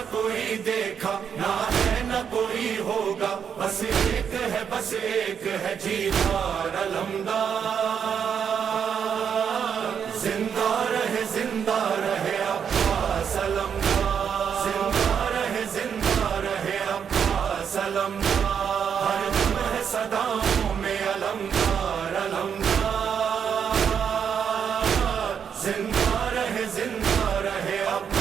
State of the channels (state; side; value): quieter; left; 7.5 dB